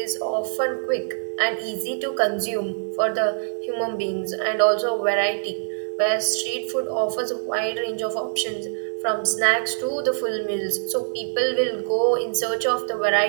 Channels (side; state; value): left; silent; 59 dB below the other